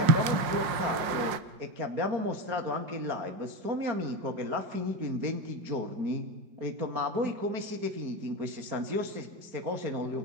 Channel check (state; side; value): late; left; 5.5 ms